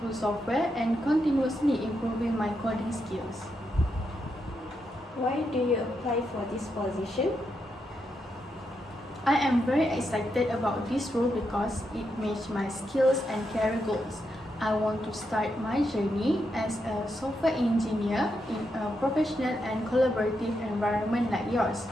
software and continuously improving my coding skills. Why do you apply for this position? I am very excited about this role because it matches my skills and career goals. I want to start my journey as a software engineer in a professional and collaborative environment like yours.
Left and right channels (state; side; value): normal; both; correlation 0.83